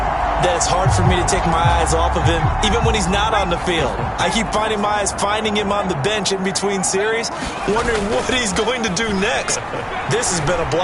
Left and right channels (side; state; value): both; identical; correlation 1.00